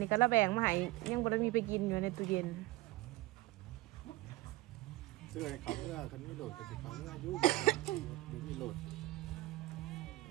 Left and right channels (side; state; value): left; quieter; 18.6 dB